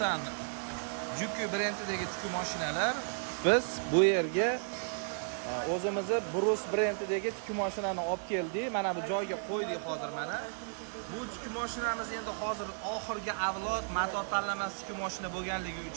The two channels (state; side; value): silent; left; digital silence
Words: Juki brendidagi tikuv mashinalar. Biz bu yerga o'zimizni Brus brendidagi tikuv mashinani olib keldik. Mana bu joyga qo'ydik hozir mana. Bu tikuv mashinamiz endi hozir oxirgi avlod motor tanlamas tikuv mashina bo'lganligi